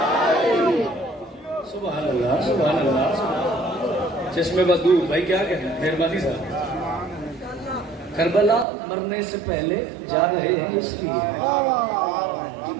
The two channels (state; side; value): drops out; left; at 8.7 s